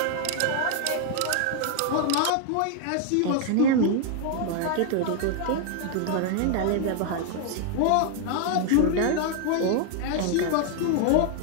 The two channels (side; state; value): both; different; correlation 0.00